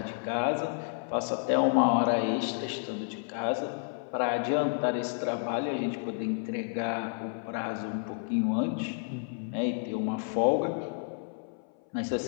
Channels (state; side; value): silent; right; 57 dB below the other